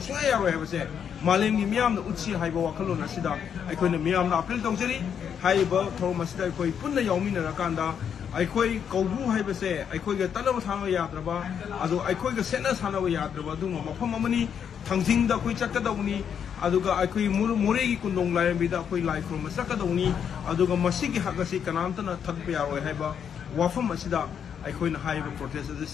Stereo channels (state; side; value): quieter; right; 7.9 dB